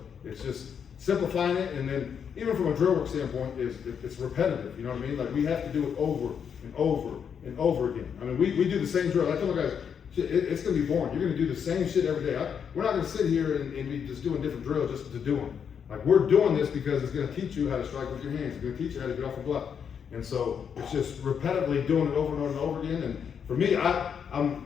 it's just simplifying it, and then even from a drill work standpoint, it's repetitive. You know what I mean? Like we have to do it over and over and over again. I mean, we do the same drill. I tell my guys, it's going to be boring. You're going to do the same shit every day. We're not going to sit here and be just doing different drills just to do them. Like we're doing this because it's going to teach you how to strike with your hands. It's going to teach you how to get off the block. And so it's just repetitively doing it over and over and over again. And for me, I'm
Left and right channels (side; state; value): right; quieter; 7.4 dB